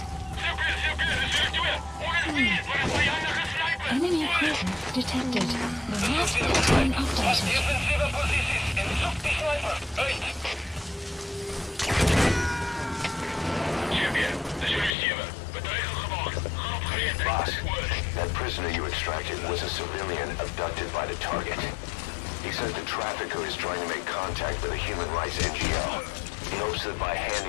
Enemy presence detected. The map has been updated. Boss, that prisoner you extracted was a civilian abducted by the target. He says the trafficker is trying to make contact with a human rights NGO. He hopes that by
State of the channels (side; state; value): right; drops out; at 15.0 s